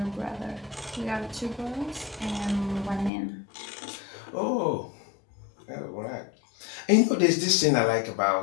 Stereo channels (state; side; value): drops out; right; at 3.1 s